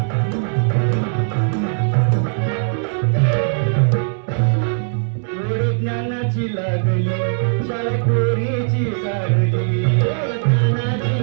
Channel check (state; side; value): silent; left; 61 dB below the other